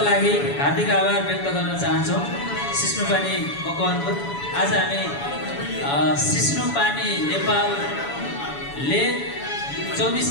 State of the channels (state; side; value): late; right; 7.1 ms